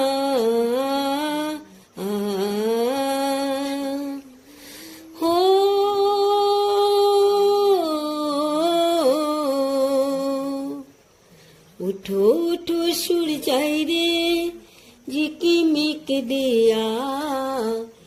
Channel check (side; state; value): both; identical; correlation 1.00